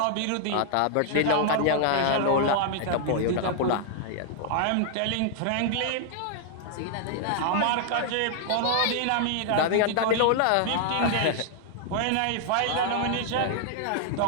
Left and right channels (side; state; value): both; different; correlation 0.00